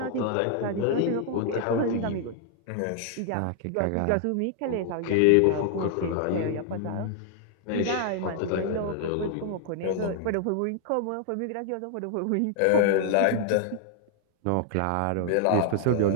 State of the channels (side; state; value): both; different; correlation 0.00